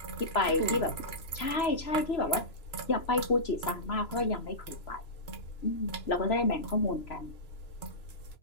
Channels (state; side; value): late; right; 3.0 ms